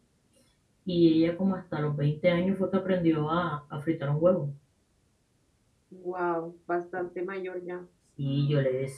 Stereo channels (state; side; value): identical; both; correlation 1.00